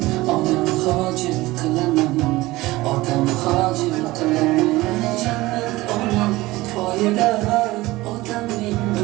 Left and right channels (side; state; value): left; quieter; 19.2 dB